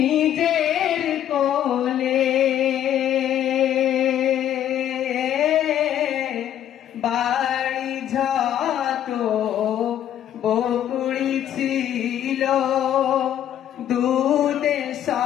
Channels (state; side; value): quieter; right; 10.9 dB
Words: কোলে, বাড়ি যত বকুড়ি ছিল দুধে